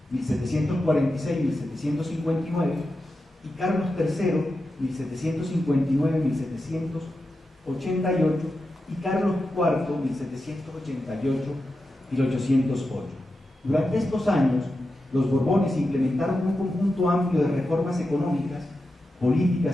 1746-1759, y Carlos III, 1759-1788, y Carlos IV, 1788-1808. Durante estos años, los Borbones implementaron un conjunto amplio de reformas económicas,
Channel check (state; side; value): normal; both; correlation 0.90